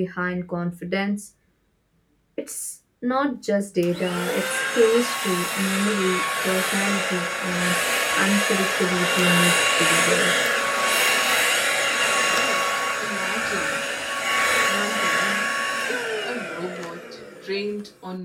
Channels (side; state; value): both; identical; correlation 1.00